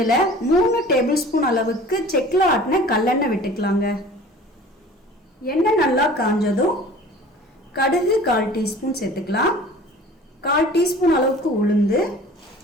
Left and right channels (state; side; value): normal; both; correlation 0.44